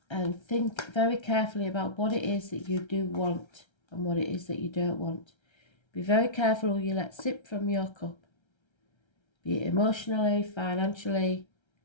think very carefully about what it is that you do want and what it is that you don't want. Be very careful who you let sip from your cup, be it emotionally, financially,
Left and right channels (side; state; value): right; late; 1.3 ms